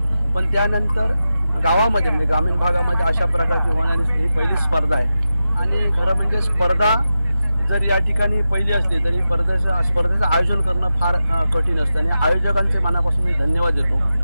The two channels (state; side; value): inverted; both; correlation -0.91